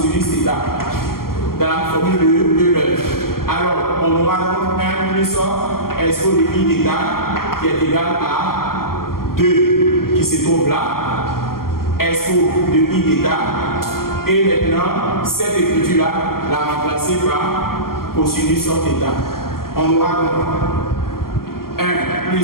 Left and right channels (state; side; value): late; right; 0.92 ms